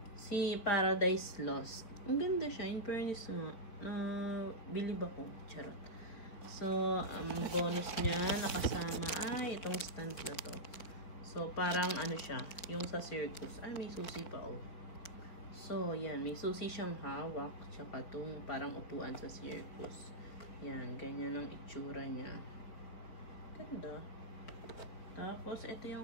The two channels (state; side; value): late; right; 4.6 ms